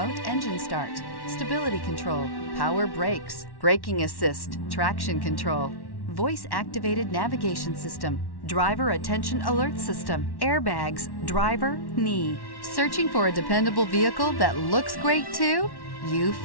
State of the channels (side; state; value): right; late; 1.1 ms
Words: engine start, stability control, power brakes, braking assist, traction control, voice-activated navigation system, driver attention alert system, airbags, driver, knee. Searching for a dependable vehicle that looks great too? You